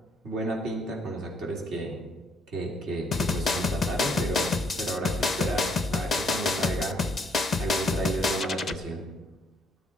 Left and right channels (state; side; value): normal; both; correlation 0.68